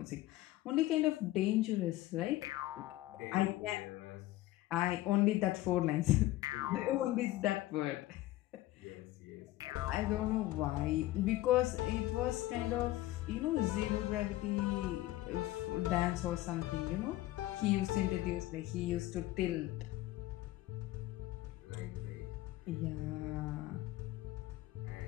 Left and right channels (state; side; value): quieter; right; 16.5 dB